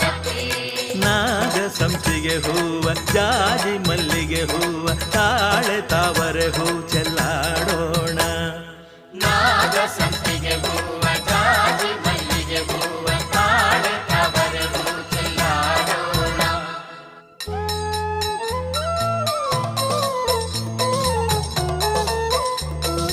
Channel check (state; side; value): identical; both; correlation 1.00